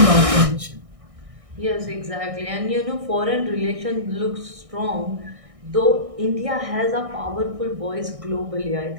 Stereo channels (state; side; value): late; left; 1.6 ms